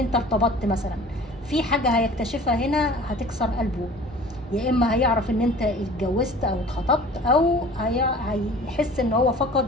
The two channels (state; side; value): normal; both; correlation 0.45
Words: ارتبطت مثلا، في حاجة هيكتشفها هنا هتكسر قلبه، يا اما هيعرف ان انت اتجوزت او اتخطبت، او هيحس ان هو